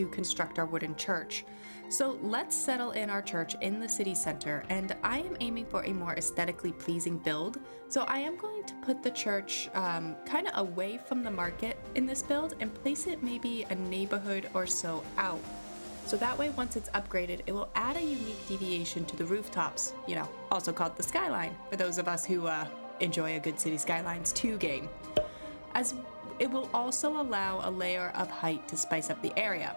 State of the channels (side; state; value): both; inverted; correlation -1.00